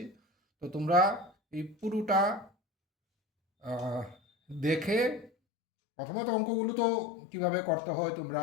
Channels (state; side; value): drops out; right; at 5.3 s